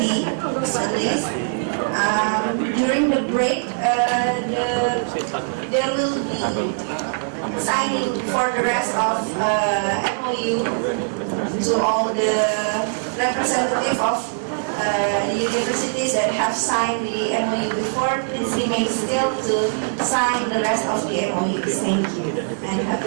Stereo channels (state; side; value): silent; left; 61 dB below the other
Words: at least. During the break, there will be signing for the rest of MOU to all the representative of the universities that have signed the MOU before. Please remain still to sign the rest of the MOUs. Thank you. And